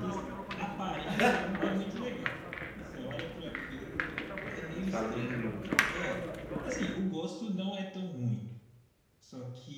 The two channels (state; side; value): identical; both; correlation 1.00